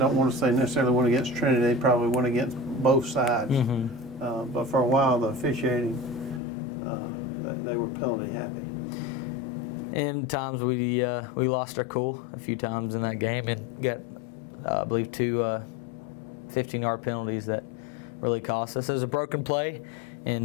want to say necessarily went against Trinity, they probably went against both sides. But for a while, the officiating, they were penalty happy. And times we lost our cool a few times in that game and got, I believe, 2 15-yard penalties that really cost us. It was a broken play,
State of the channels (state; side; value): drops out; right; at 6.4 s